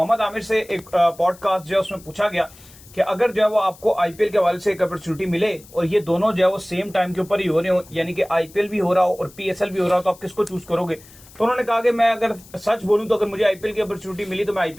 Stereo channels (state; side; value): noise; left; hiss, 23 dB below the sound